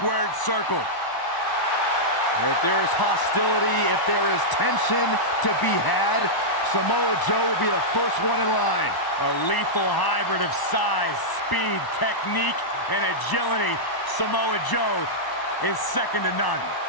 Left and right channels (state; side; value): late; right; 1.0 ms